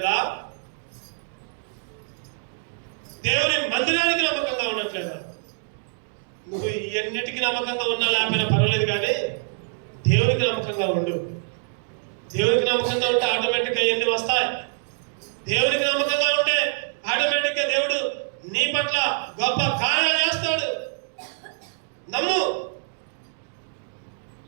దేవుని మందిరానికి నమ్మకంగా ఉండట్లేదా? నువ్వు ఇవన్నిటికీ నమ్మకంగా ఉన్నా లేకపోయినా పర్వాలేదు, కానీ దేవునికి నమ్మకంగా ఉండు. దేవునికి నమ్మకంగా ఉంటే ఆటోమేటిక్గా ఇవన్నీ వస్తాయి. దేవునికి నమ్మకంగా ఉంటే ఆటోమేటిక్గా దేవుడు నీ పట్ల గొప్ప కార్యాలు చేస్తాడు. నమ్ము.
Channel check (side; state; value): left; silent; digital silence